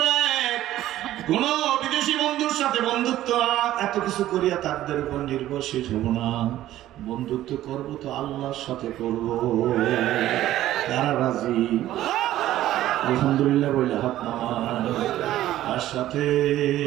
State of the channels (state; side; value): quieter; left; 13.8 dB